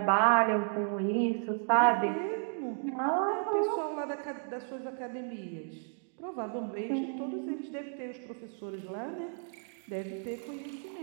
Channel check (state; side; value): silent; left; 56 dB below the other